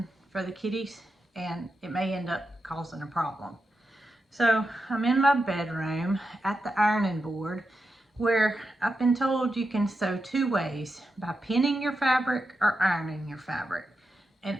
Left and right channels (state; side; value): normal; both; correlation 0.88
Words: for the kitties and it may end up causing a problem. So I'm in my bedroom at the ironing board where I've been told you can sew two ways, by pinning your fabric or ironing your fabric. And